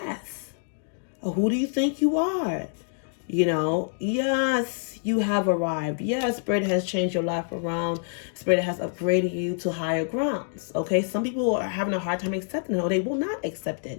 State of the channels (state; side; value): silent; right; digital silence